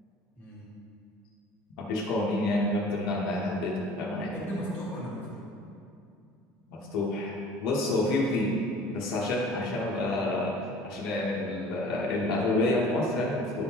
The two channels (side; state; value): both; normal; correlation 0.48